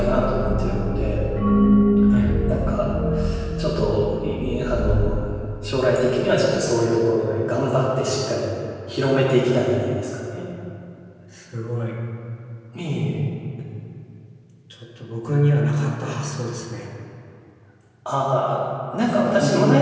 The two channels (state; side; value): identical; both; correlation 1.00